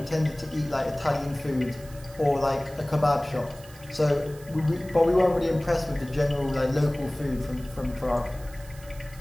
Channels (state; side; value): noise; right; hiss, 21 dB below the sound